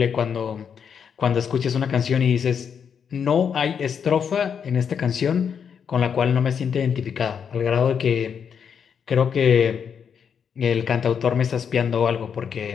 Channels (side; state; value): right; quieter; 7.2 dB